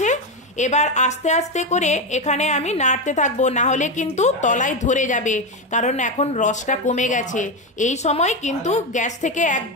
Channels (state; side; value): normal; both; correlation 0.12